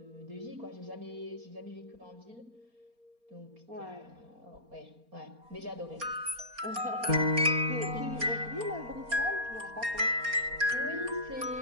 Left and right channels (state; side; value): late; left; 4.3 ms